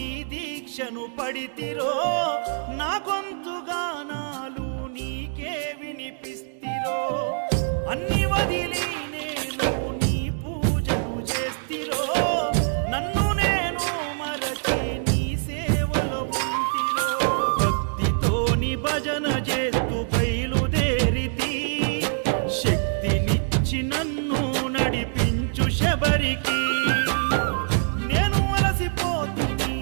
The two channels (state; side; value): silent; left; digital silence